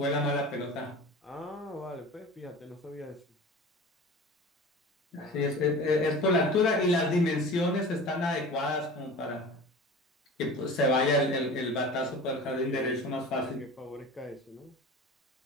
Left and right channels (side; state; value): both; normal; correlation 0.37